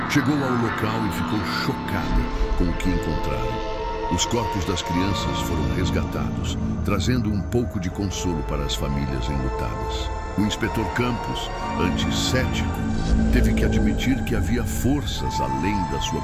chegou ao local e ficou chocada com o que encontraram. Os corpos das crianças foram resgatados, trazendo um pouco de consolo para as famílias enlutadas. O inspetor Campos, antes cético, teve que admitir que havia forças além da sua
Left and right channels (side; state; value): both; identical; correlation 1.00